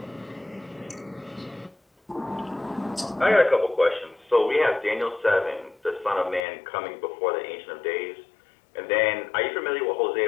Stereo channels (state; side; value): drops out; right; at 6.5 s